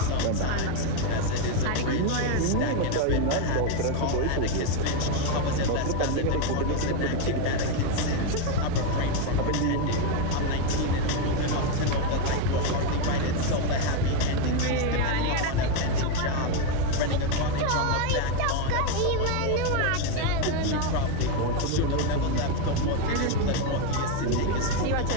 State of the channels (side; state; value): both; different; correlation 0.02